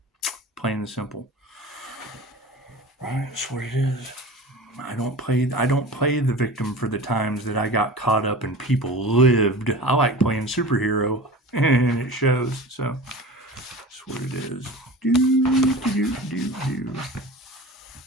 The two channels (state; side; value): normal; both; correlation 0.36